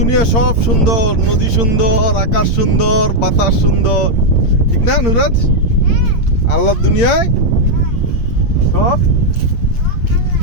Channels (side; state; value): right; late; 8.6 ms